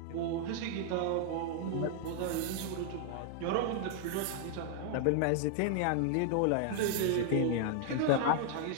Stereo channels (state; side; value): different; both; correlation -0.01